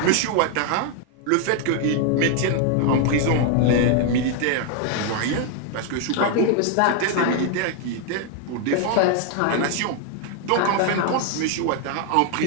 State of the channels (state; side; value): different; both; correlation 0.00